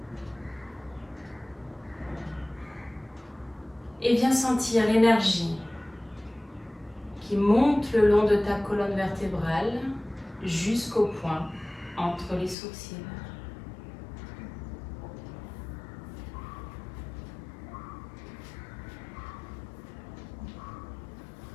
Et viens sentir l'énergie qui monte le long de ta colonne vertébrale jusqu'au point entre les sourcils.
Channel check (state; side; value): drops out; right; at 12.6 s